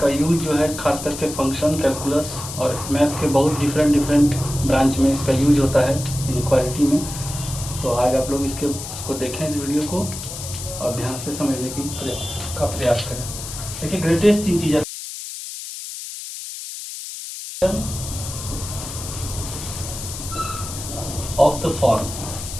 यूज जो है खास करके फंक्शन, कैलकुलस और मैथ्स के बहुत डिफरेंट ब्रांच में इसका यूज होता है इनइक्वालिटी में। तो आज आप लोग इसको देखें इस वीडियो को और ध्यान से समझने का प्रयास करें। देखिए greatest integer of the form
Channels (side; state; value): left; noise; hiss, 9 dB below the sound